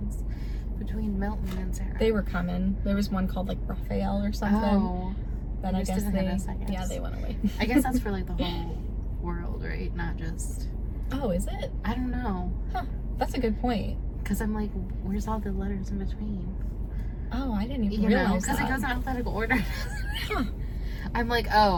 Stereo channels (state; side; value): identical; both; correlation 1.00